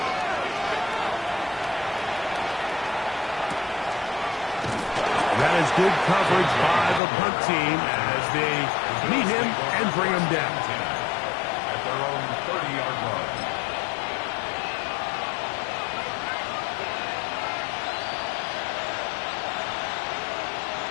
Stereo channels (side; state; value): right; drops out; at 7.0 s